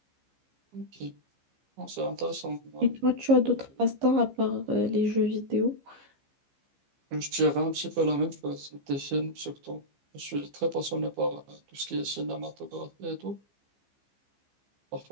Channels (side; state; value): left; late; 15 ms